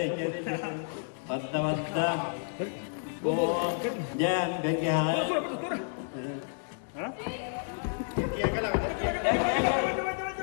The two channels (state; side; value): silent; right; digital silence